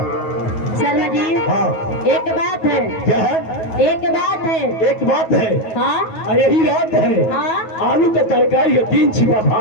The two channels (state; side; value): late; right; 9.2 ms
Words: शर्मा जी हाँ एक बात है। क्या है? एक बात है। एक बात है हाँ यही रात है। हाँ आलू का तरकारी है 3 छिपा